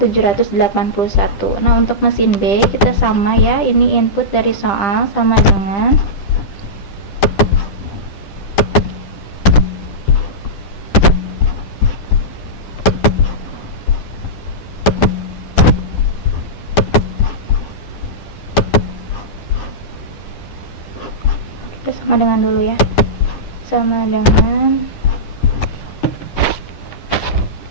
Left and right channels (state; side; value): late; right; 10 ms